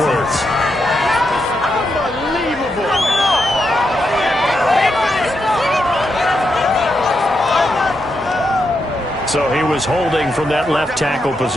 So he was holding from that left tackle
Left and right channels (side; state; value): both; normal; correlation 0.83